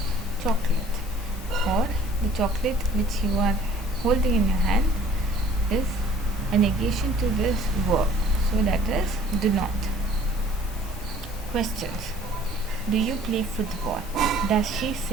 chocolate, or the chocolate which you are holding in your hand is a negation to this verb. So that is do not. Questions. Do you play football? Does she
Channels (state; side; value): normal; both; correlation 0.53